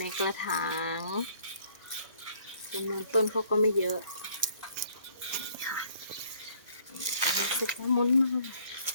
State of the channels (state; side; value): inverted; both; correlation -0.61